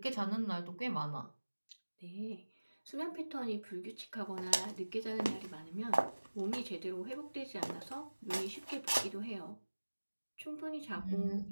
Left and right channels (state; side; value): inverted; both; correlation -1.00